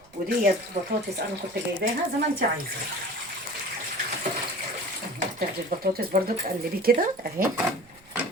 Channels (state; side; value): noise; right; rumble, 28 dB below the sound